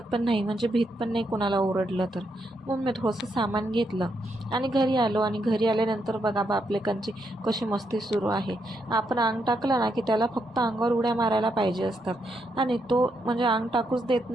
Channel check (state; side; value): normal; both; correlation 0.79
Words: पण नाही, म्हणजे भीत पण नाही कोणाला ओरडलं तर. मग मी थोडंसं सामान घेतलं आणि घरी आलो. आणि घरी आल्यानंतर बघा बापलेकांची कशी मस्ती सुरू आहे. आपण अंग टाकलं ना की त्याला फक्त अंगावर उड्या मारायला पाहिजे असतात, आणि तो म्हणजे अंग टाकूच देत